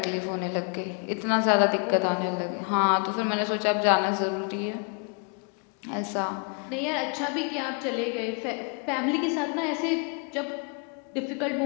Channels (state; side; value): quieter; right; 39.3 dB